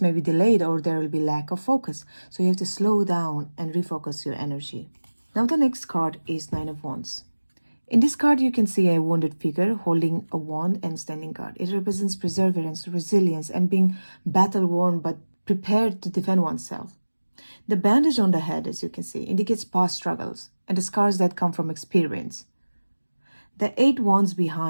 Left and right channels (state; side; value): inverted; both; correlation -1.00